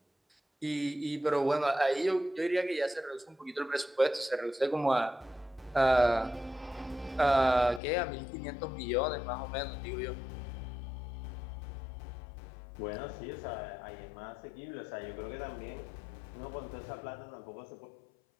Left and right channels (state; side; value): drops out; right; at 7.8 s